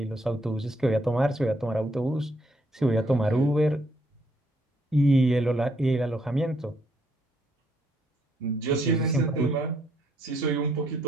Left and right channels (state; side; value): normal; both; correlation 0.71